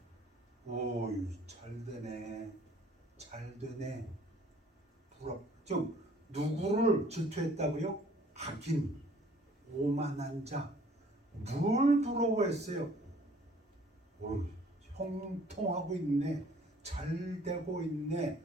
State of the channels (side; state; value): both; normal; correlation 0.56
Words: 오이 잘 되네. 잘 되네. 부럽. 즉 누구를 질투했다고요? 악인, 오만한 자. 뭘 부러워했어요? 오, 형통하고 있네. 잘 되고 있네.